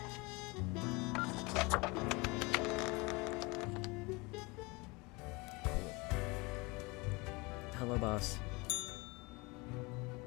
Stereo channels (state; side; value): quieter; right; 25.8 dB